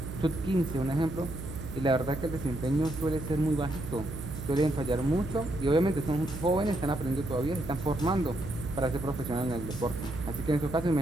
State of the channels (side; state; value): right; noise; hum, 9 dB below the sound